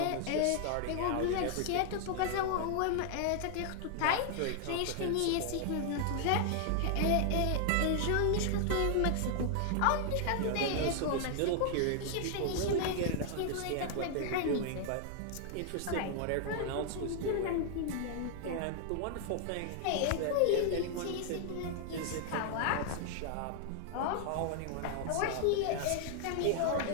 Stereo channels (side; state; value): both; different; correlation 0.00